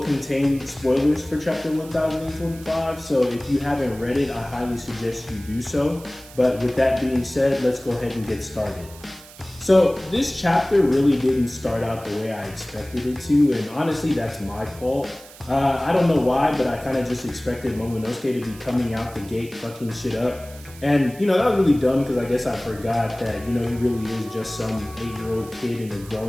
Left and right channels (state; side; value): noise; right; hiss, 20 dB below the sound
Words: contain spoilers for chapter 1025, so if you haven't read it, I highly suggest you do so. But with that being said, let's go ahead and get started. So this chapter really didn't start out the way I expected it to, and honestly, that's my fault. I don't know why, but I kind of just expected Momonosuke to be coming out the gate fucking shit up. And, that was really dumb because I guess I forgot that, he really is just some 8-year-old kid in a